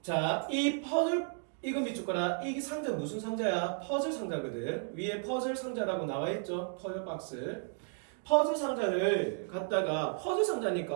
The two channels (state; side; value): silent; left; 55 dB below the other